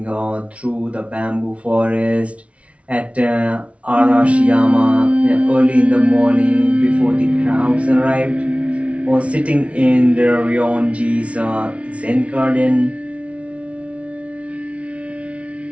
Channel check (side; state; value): left; late; 0.063 ms